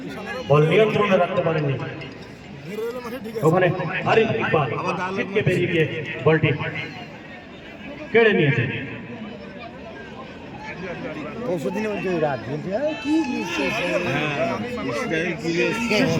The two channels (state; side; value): identical; both; correlation 1.00